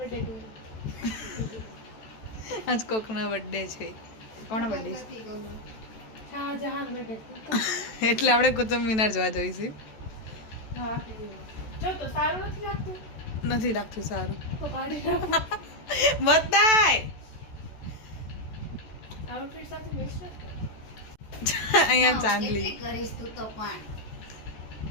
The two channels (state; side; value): late; right; 14 ms